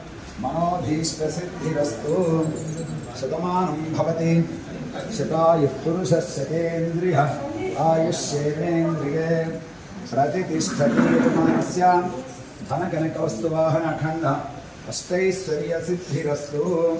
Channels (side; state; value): both; identical; correlation 1.00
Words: मनोभीष्टसिद्धिरस्तु. शतमानं भवति शतायुः पुरुषः शतेन्द्रियः आयुष्येवेन्द्रिये प्रतितिष्ठति यजमानस्य धनकनकवस्तुवाहनखण्डः अष्टैश्वर्यसिद्धिरस्तु.